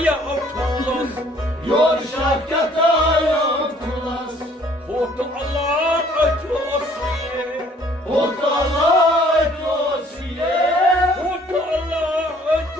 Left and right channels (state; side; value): normal; both; correlation 0.58